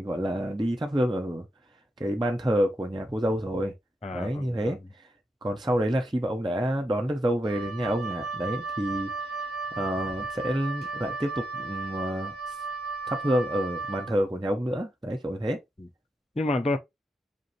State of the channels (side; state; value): both; normal; correlation 0.84